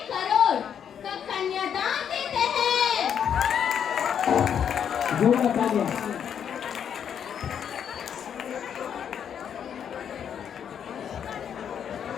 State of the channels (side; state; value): right; quieter; 8.4 dB